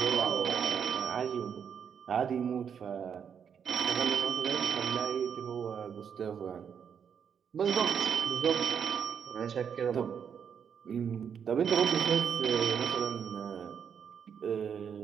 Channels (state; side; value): quieter; left; 7.5 dB